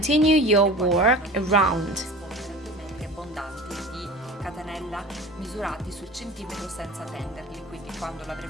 your work around. Catenella misurati sul centimetro senza tenderli, quindi quando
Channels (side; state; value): both; normal; correlation 0.37